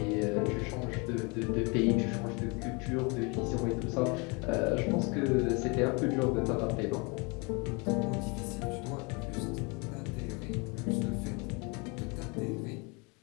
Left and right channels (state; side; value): quieter; right; 30.0 dB